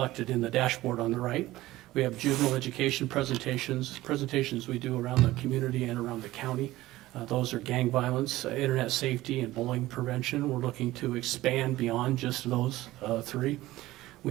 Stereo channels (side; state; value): left; quieter; 17.0 dB